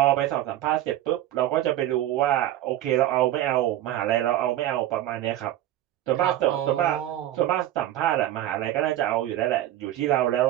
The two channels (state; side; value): quieter; left; 13.4 dB